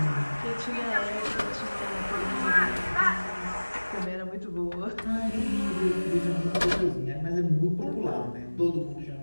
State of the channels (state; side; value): inverted; both; correlation -1.00